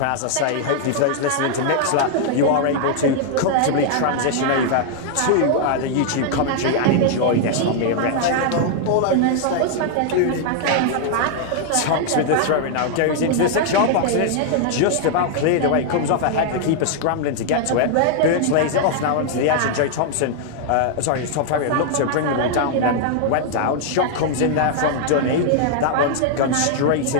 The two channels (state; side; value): different; both; correlation 0.00